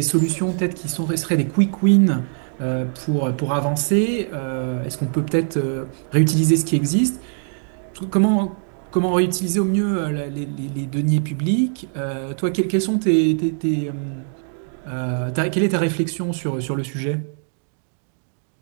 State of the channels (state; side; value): silent; left; 64 dB below the other